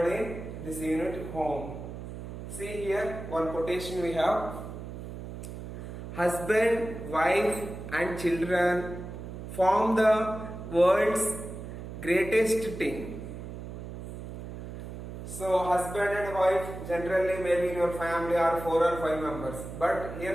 in this unit, home. See here, one quotation we have. Husband, wife and children form the world's greatest team. So husband and wife, generally maybe in your family are 4 or 5 members. But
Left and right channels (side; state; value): right; noise; hum, 9 dB below the sound